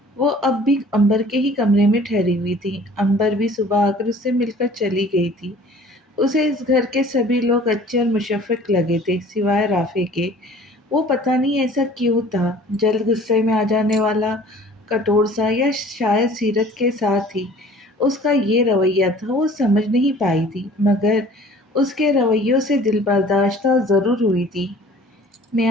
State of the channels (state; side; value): normal; both; correlation 0.49